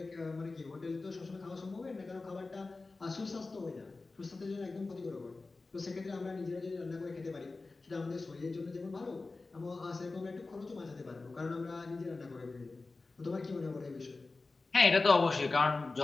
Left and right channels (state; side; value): quieter; right; 3.6 dB